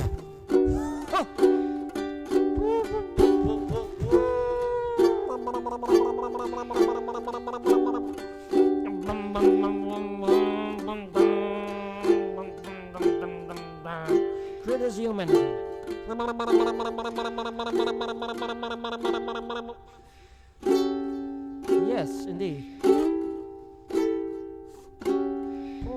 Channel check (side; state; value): both; identical; correlation 1.00